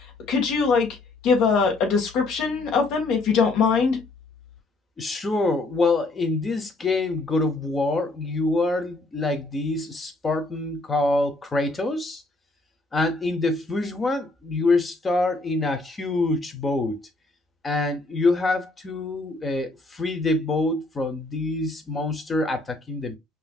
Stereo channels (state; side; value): quieter; right; 3.1 dB